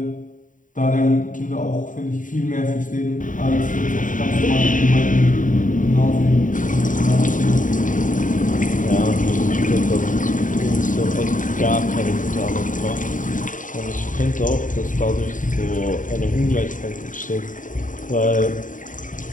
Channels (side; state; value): right; late; 0.38 ms